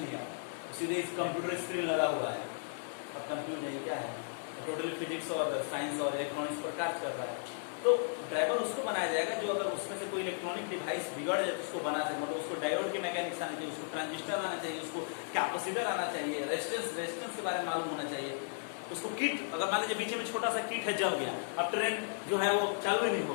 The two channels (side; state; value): right; silent; digital silence